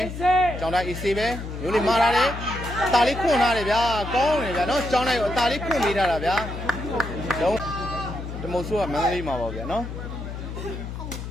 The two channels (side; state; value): left; noise; hum, 8 dB below the sound